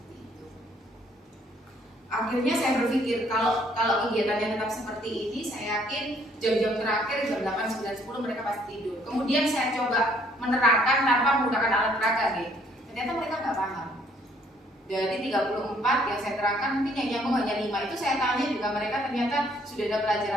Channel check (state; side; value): normal; both; correlation 0.64